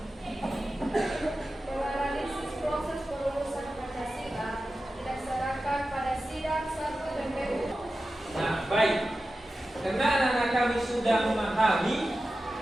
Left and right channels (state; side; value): normal; both; correlation 0.93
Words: Bahwa analisis proses perumusan Pancasila didasarkan pada sidang 1 DPU. Nah, baik. Karena anak-anak kami sudah memahami